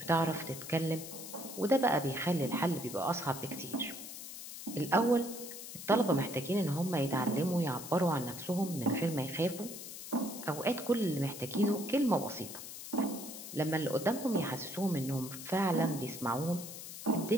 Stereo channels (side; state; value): left; noise; hiss, 10 dB below the sound